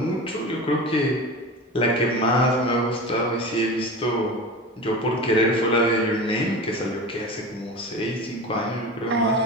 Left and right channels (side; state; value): both; normal; correlation 0.31